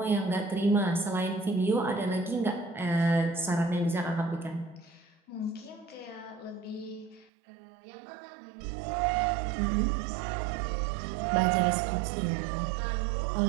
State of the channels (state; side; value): drops out; left; at 7.2 s